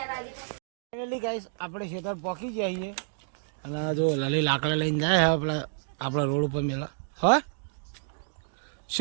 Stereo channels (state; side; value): silent; left; digital silence